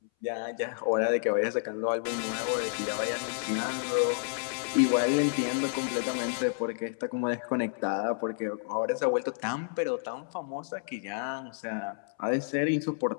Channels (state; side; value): silent; right; 58 dB below the other